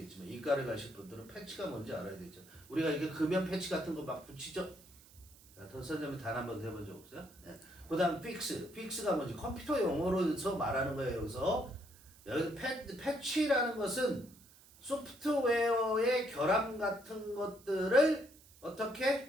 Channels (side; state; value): right; noise; hiss, 24 dB below the sound